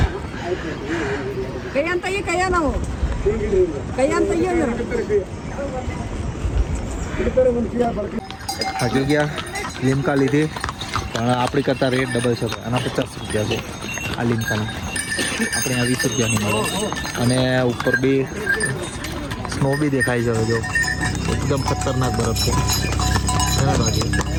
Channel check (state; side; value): identical; both; correlation 1.00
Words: હજુ ગયા લીમકા લીધી, પણ આપણી કરતાં રેટ ડબલ છે. આના 50 રૂપિયા છે આ લીમકાના, આપણે આ 20 રૂપિયાની મળે. અને ઉપર બી સ્નો બી દેખાય છે. જો એકદમ ખતરનાક બરફ છે. બાકી